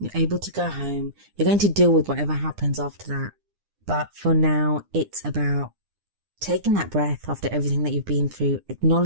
able to go home. You're going to deal with whatever happens after that. But for now, it's about taking that breath after everything that you've been through,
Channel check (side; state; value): left; late; 9.9 ms